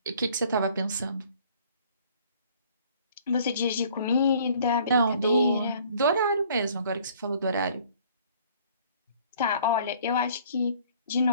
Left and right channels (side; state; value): both; inverted; correlation -0.56